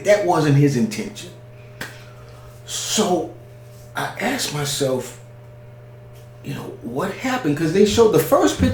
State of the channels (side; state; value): both; identical; correlation 1.00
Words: that wasn't his intention. So I asked myself, what happened? Because they showed the first